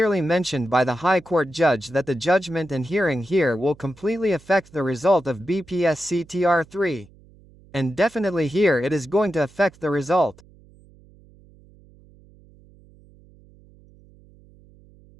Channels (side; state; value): right; noise; hum, 26 dB below the sound